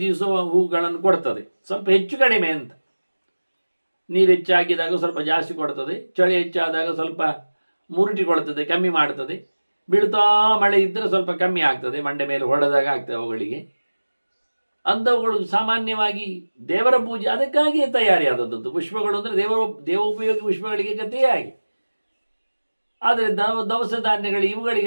ದಿವಸ ಹೂಗಳನ್ನು ಕೊಡ್ತದೆ, ಸ್ವಲ್ಪ ಹೆಚ್ಚು ಕಡಿಮೆ ಅಂತ. ನೀರು ಹೆಚ್ಚಾಗಿದಾಗ ಸ್ವಲ್ಪ ಜಾಸ್ತಿ ಕೊಡ್ತದೆ, ಚಳಿ ಹೆಚ್ಚಾದಾಗ ಸ್ವಲ್ಪ ಮುರುಟಿಕೊಳ್ತದೆ, ಕಮ್ಮಿ ಮಾಡ್ತದೆ. ಬೀಳ್ತಾ ಮಳೆ ಇದ್ದರೆ ಸ್ವಲ್ಪ ಕಮ್ಮಿ ಆಗ್ತದೆ, ಮಂಡೆ ಮೇಲೆ ಹೊಡೆದಾಗ ಆಗ್ತದೆ ಅವುಗಳಿಗೆ. ಅಂಥವುಗಳು ಸಾಮಾನ್ಯವಾಗಿ ದೇವರ ಪೂಜೆ ಅದಕ್ಕಾಗಿಯೇ ತಯಾರಿಯಾದದ್ದು ಪುಷ್ಪಗಳು. ಅಂದರೆ ದೇವೋಪಯೋಗಿ ಪುಷ್ಪಗಳಿಗೆ ಗತಿಯಾಗಿ. ಆದರೆ ದವಸ ಧಾನ್ಯಗಳು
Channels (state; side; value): inverted; both; correlation -1.00